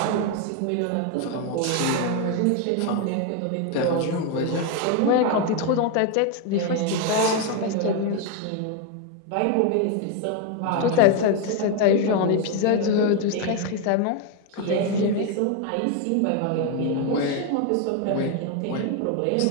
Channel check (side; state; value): both; different; correlation 0.01